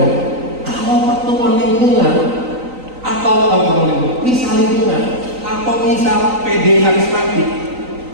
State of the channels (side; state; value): left; late; 3.9 ms